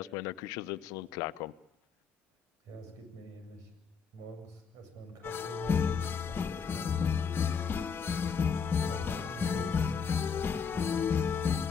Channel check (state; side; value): quieter; right; 6.2 dB